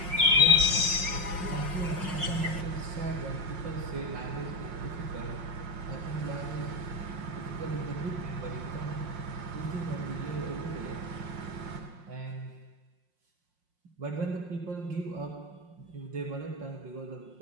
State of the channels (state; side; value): late; left; 5.6 ms